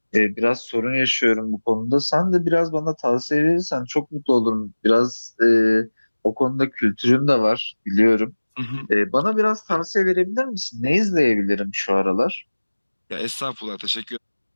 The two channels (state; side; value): inverted; both; correlation -1.00